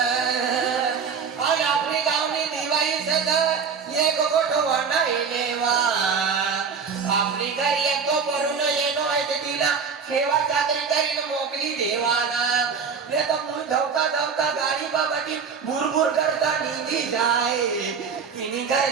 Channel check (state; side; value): quieter; left; 6.0 dB